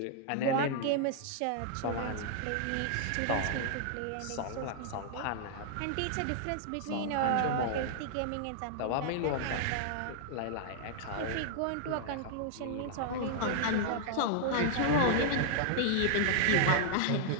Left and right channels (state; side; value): different; both; correlation -0.01